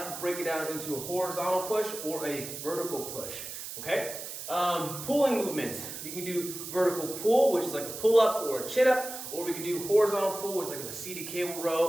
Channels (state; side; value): noise; right; hiss, 9 dB below the sound